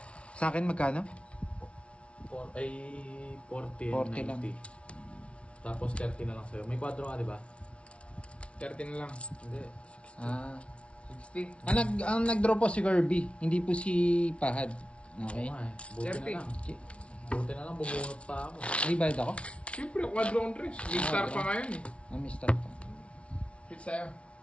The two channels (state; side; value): late; right; 0.061 ms